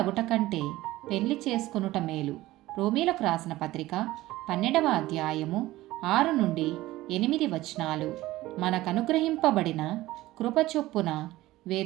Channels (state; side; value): quieter; left; 17.1 dB